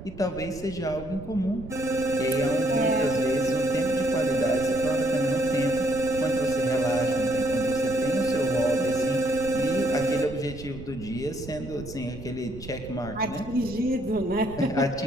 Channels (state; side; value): noise; right; rumble, 13 dB below the sound